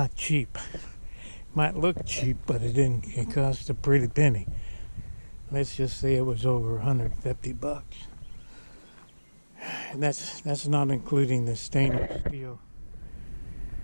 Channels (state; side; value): inverted; both; correlation -1.00